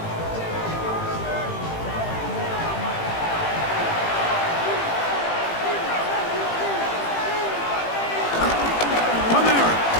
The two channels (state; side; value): late; right; 18 ms